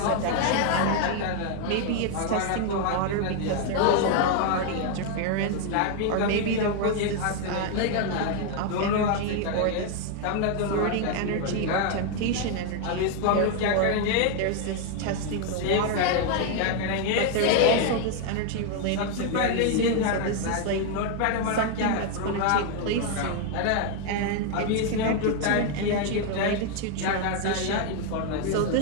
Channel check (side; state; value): both; different; correlation 0.00